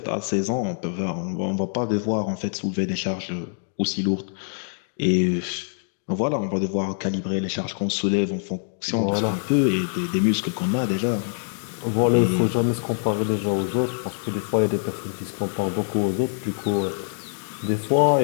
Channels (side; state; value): right; silent; digital silence